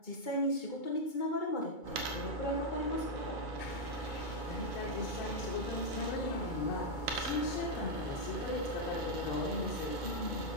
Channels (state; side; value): late; right; 2.2 ms